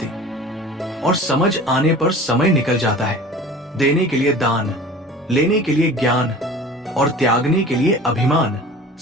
और समझ आने पर समय निकल जाता है। देने के लिए दान, लेने के लिए ज्ञान और त्यागने के लिए अभिमान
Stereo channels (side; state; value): both; normal; correlation 0.41